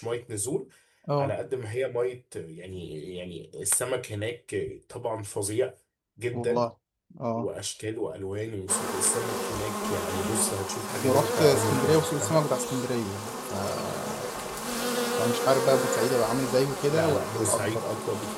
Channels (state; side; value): identical; both; correlation 1.00